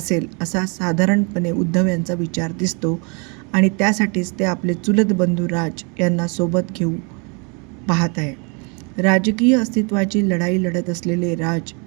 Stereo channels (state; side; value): quieter; left; 33.5 dB